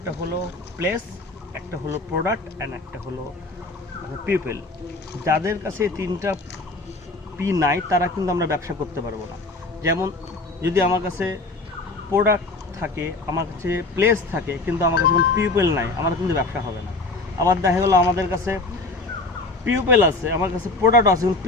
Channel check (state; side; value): quieter; right; 3.1 dB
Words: হলো প্লেস, একটা হলো প্রোডাক্ট অ্যান্ড একটা হলো পিপল। যাদের কাছে এই 3টা পি নাই তারা কিন্তু আমরা ব্যবসা করতে পারবো না। যেমন যদি আমার কাছে প্রোডাক্ট থাকে, আমার কাছে প্লেস থাকে, কিন্তু আমার কাছে কোনো পিপল নাই, আমার কিন্তু ব্যবসা হবে না। আবার দেখা গেলো আমাদের কাছে পিপল আছে, আমার কাছে প্রোডাক্ট আছে, কিন্তু